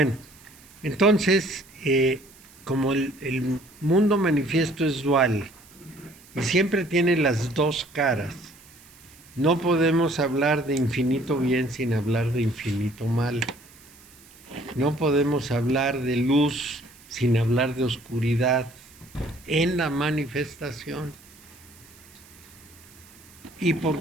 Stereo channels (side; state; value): right; noise; hiss, 24 dB below the sound